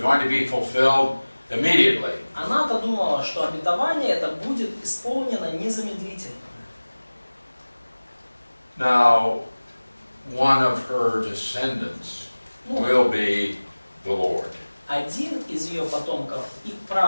to be fulfilled immediately. Она-то думала, что обетование это будет исполнено незамедлительно. Now, one of her descendants will be the Lord. Один из ее потомков и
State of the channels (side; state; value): both; inverted; correlation -1.00